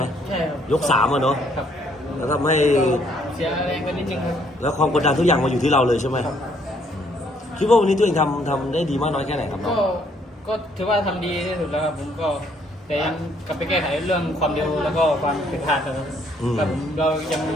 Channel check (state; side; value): normal; both; correlation 0.66